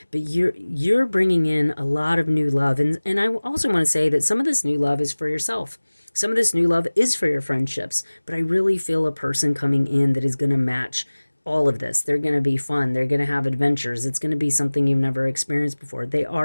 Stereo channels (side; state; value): both; inverted; correlation -1.00